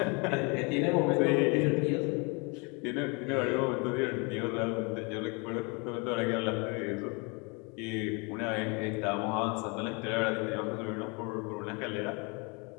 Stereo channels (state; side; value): quieter; right; 31.0 dB